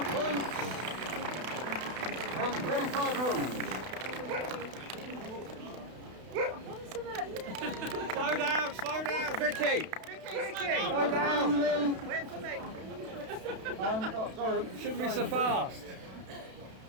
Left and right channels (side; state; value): left; late; 32 ms